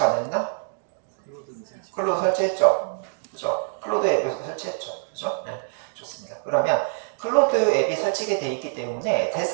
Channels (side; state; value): left; silent; digital silence